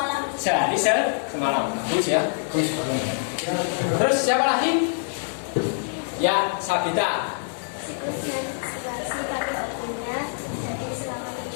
Sehari semalam. Bagus ya. Bagus. Terus siapa lagi? Ya, Sabita. Siklus menstruasi pada waktunya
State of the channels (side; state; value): right; silent; 56 dB below the other